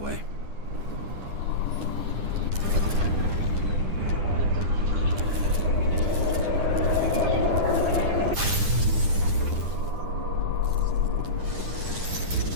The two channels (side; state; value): left; late; 10 ms